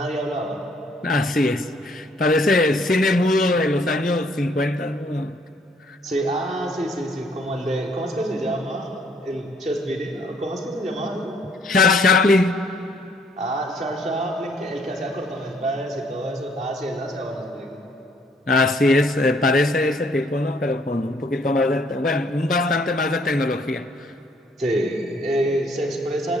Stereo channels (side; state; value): both; normal; correlation 0.64